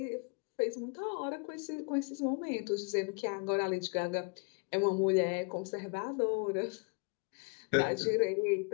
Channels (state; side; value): quieter; right; 36.3 dB